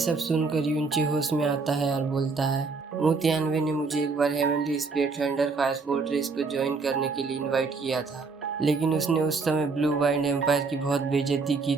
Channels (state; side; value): quieter; left; 4.3 dB